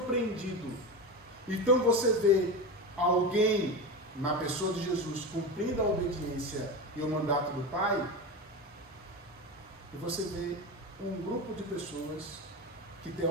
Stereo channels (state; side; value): normal; both; correlation 0.22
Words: Então você vê alguém, na pessoa de Jesus, cumprindo a obediência e o mandato do Pai, e você vê um grupo de pessoas que